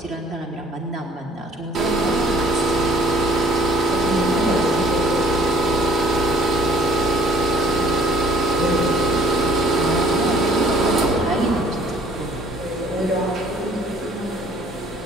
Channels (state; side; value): normal; both; correlation 0.57